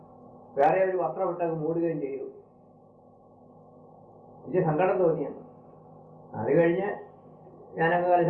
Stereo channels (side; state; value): both; identical; correlation 1.00